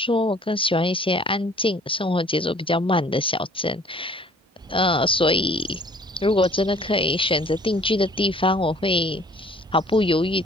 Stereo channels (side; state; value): both; normal; correlation 0.54